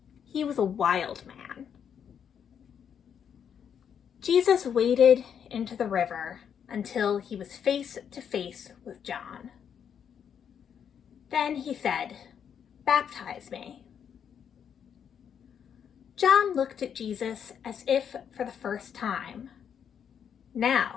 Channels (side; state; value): right; quieter; 8.0 dB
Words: He was a wild man. Jesus waded into the river until he was face to face with John. Then he said, "Baptize me." John looked at Jesus as if for the first time.